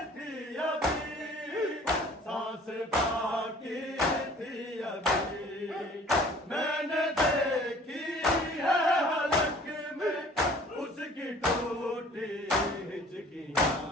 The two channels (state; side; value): normal; both; correlation 0.51